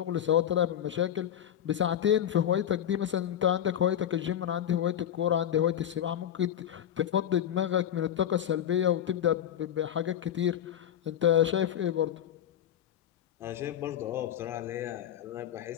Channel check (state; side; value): quieter; right; 10.3 dB